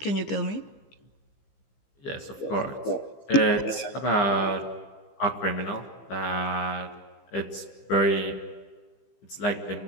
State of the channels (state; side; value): late; right; 15 ms